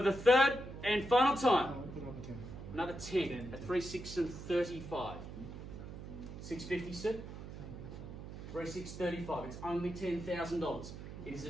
the third and final time. Another 10 at 3635. 650, sir? 3635. It's only $10,000. It is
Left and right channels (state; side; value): noise; right; hum, 10 dB below the sound